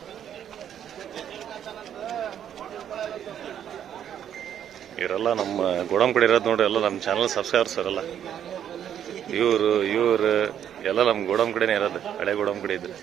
ಇವರೆಲ್ಲ ನಮ್ಮ ಗೋಡಂ ಕಡೆ ಇರೋದು ನೋಡ್ರಿ, ಎಲ್ಲ ನಮ್ಮ ಚಾನಲ್ ಸಬ್ಸ್ಕ್ರೈಬರ್ಸ್ ಅವರೆಲ್ಲ ಇವರು ಎಲ್ಲ ನಮ್ಮ ಗೋಡಂ ಕಡೆನೇ ಇರೋದು, ಹಳೆ ಗೋಡಂ ಕಡೆ ಇದ್ರೆ.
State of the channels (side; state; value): left; quieter; 9.7 dB